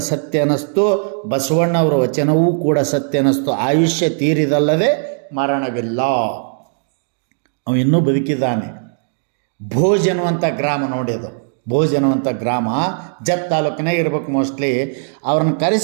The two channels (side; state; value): left; silent; digital silence